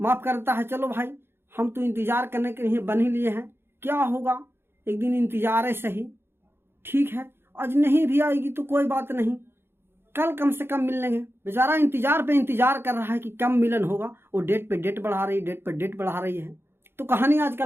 माफ करता है, चलो भाई हम तो इंतजार करने के लिए बन ही लिए हैं, क्या होगा, एक दिन इंतजार है सही, ठीक है, आज नहीं भी आएगी तो कोई बात नहीं, कल कम से कम मिल लेंगे। बेचारा इंतजार पे इंतजार कर रहा है कि कम मिलन होगा, वो डेट पे डेट बढ़ा रही है। तो कहानी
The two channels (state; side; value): late; left; 0.11 ms